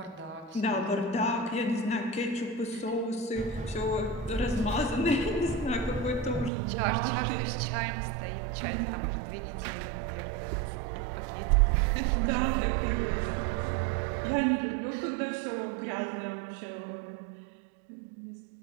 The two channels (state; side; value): drops out; left; at 6.5 s